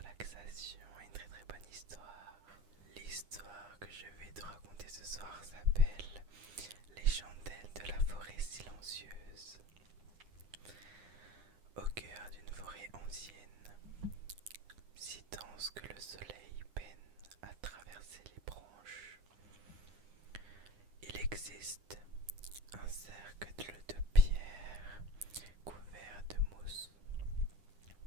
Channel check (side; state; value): left; late; 9.8 ms